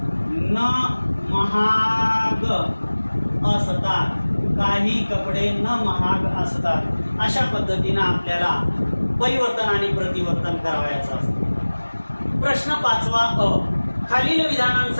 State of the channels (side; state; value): both; inverted; correlation -1.00